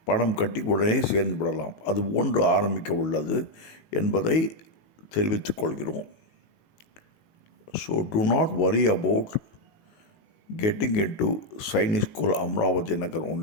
பணம் கட்டி உடனே சேர்ந்து விடலாம். அது போன்று ஆரம்பிக்க உள்ளது என்பதை தெரிவித்துக் கொள்கிறோம். So do not worry about getting into Sainik School Amravati Nagar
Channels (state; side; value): late; right; 19 ms